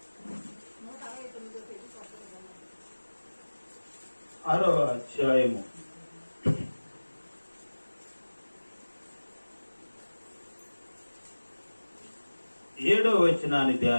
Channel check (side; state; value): both; inverted; correlation -1.00